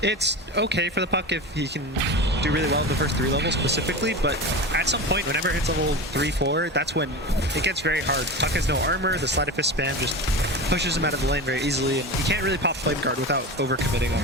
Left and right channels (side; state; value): both; normal; correlation 0.27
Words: It's okay for the Puck if he can do really well in the first 3 levels specifically, but at some point, whenever it hits level 3-4, that's when it gets very hard. Puck has no armor, the Sleight of Fist spam just pushes him out of the lane very easily, and you can't really pop Flame Guard without overcommitting